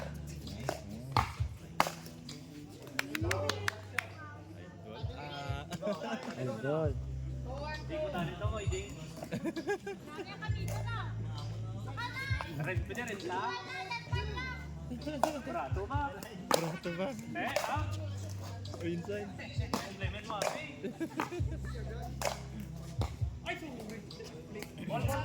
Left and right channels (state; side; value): identical; both; correlation 1.00